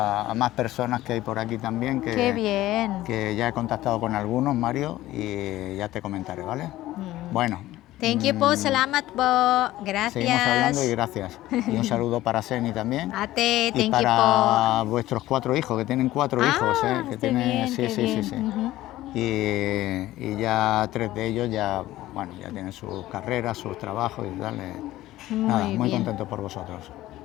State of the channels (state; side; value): quieter; right; 15.7 dB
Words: más personas que hay por aquí también, Qué bien. que ya he contactado con algunos, Mario, y ya te comentaré, ¿vale? Bueno, Thank you po, salamat po. Gracias. seguimos hablando y gracias. Y un saludo para Seni también. Ate, Y thank you para vuestros 4 hijos, que tienen 4 hijos, que qué tienen, bien, sí, qué sí, bien. sí, sí. Ujú. Y ya 3 de ellos ya tienen sus carreras, sus trabajos y tal. Nada, muy bien. contento por vosotros.